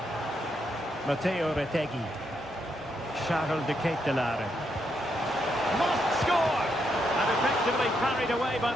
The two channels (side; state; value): both; normal; correlation 0.79